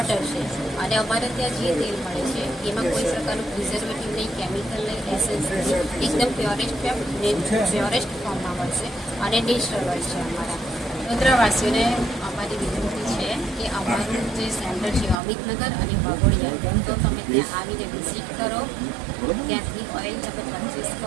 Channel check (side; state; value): left; drops out; at 15.2 s